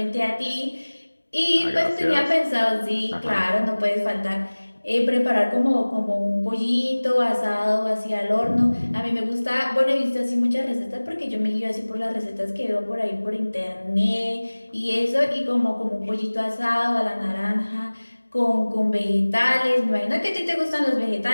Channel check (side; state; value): both; inverted; correlation -1.00